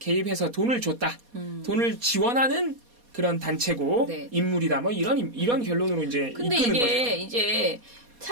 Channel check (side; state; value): left; late; 4.2 ms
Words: 개입해서 돈을 줬다. 돈을 지원하는 그런 단체고 네. 인물이다. 뭐 이런 결론으로 이제 근데 이끄는 이게 거죠. 이제